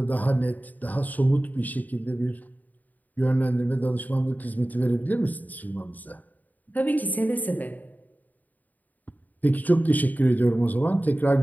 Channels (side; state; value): right; late; 0.081 ms